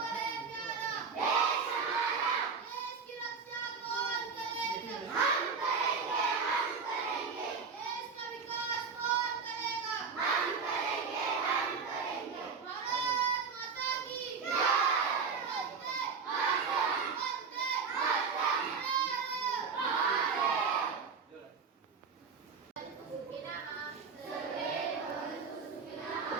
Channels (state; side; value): quieter; left; 5.5 dB